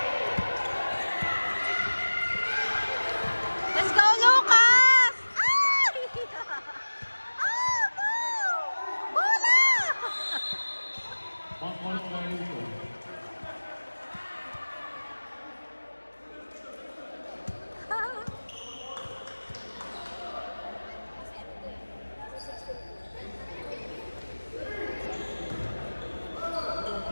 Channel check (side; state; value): both; inverted; correlation -1.00